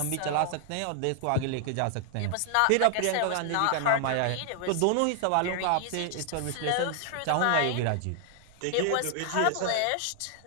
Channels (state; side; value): different; both; correlation 0.00